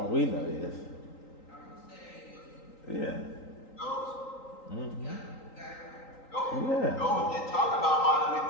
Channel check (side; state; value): right; late; 3.9 ms